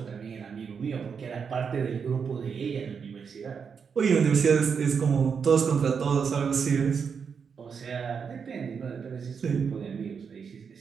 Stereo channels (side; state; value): left; quieter; 6.3 dB